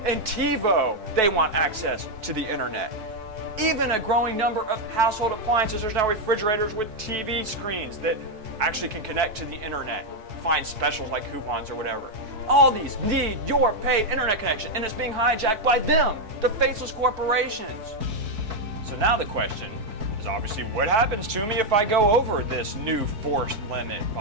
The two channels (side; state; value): left; late; 4.6 ms